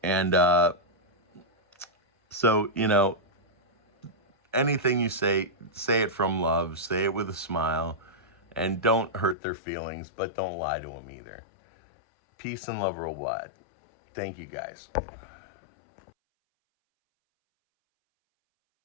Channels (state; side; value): drops out; right; at 9.3 s